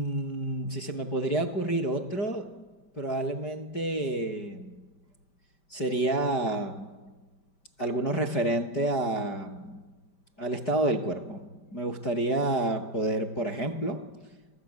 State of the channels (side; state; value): right; late; 5.1 ms